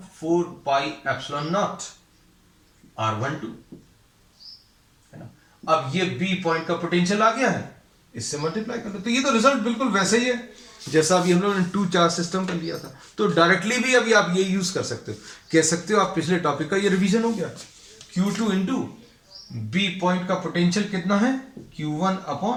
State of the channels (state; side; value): identical; both; correlation 1.00